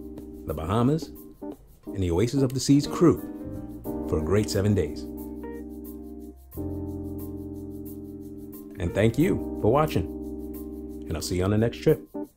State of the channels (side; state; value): both; identical; correlation 1.00